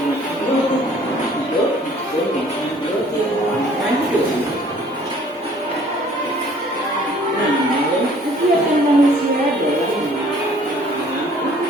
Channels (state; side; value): normal; both; correlation 0.56